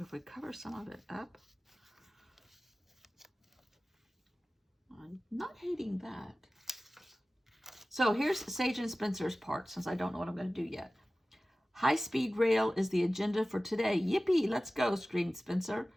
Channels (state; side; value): normal; both; correlation 0.97